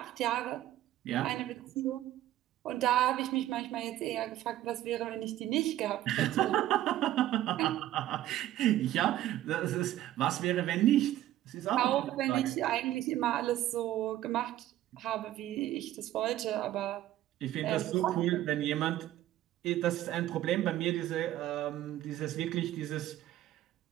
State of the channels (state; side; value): quieter; left; 13.8 dB